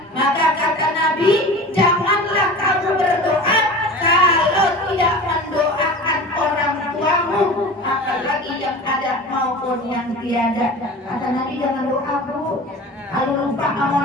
Maka kata Nabi, janganlah kamu berdoa kalau tidak mendoakan orang tuamu, apalagi yang ada maupun yang tiada. Kata Nabi, jangan doa bu, kalau lupa sama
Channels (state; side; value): normal; both; correlation 0.36